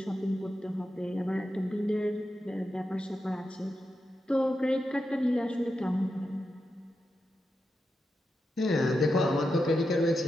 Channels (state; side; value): normal; both; correlation 0.88